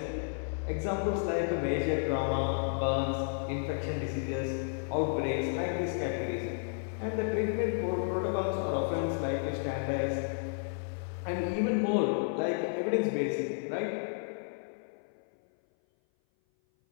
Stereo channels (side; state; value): right; silent; 56 dB below the other